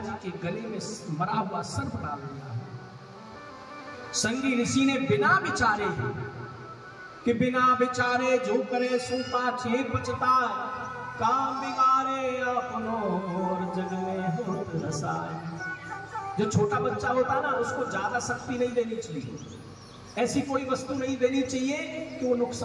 के गले में मरा हुआ सर्प डाल दिया। संगी ऋषि ने बिना विचारे कि बिना विचारे जो करे सो पाछे पछता, काम बिगाड़े अपनो और जग में होत रसाय। जो छोटा बच्चा होता ना, उसको ज्यादा शक्ति नहीं देनी चाहिए, ऐसी कोई वस्तु नहीं देनी चाहिए कि वो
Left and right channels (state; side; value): identical; both; correlation 1.00